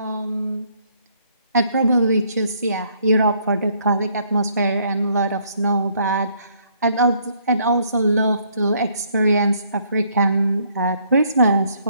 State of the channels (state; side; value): inverted; both; correlation -0.68